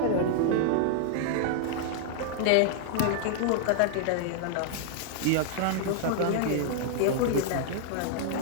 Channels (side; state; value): both; different; correlation -0.01